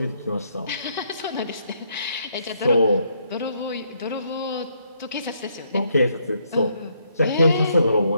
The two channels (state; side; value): inverted; both; correlation -0.73